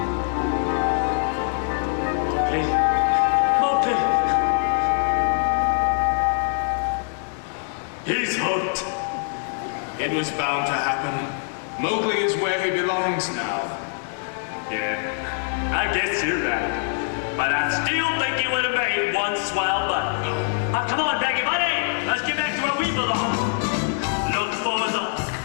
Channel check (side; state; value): right; silent; 60 dB below the other